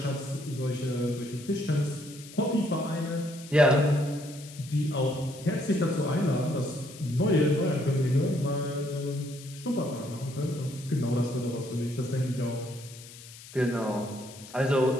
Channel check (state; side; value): noise; left; hiss, 17 dB below the sound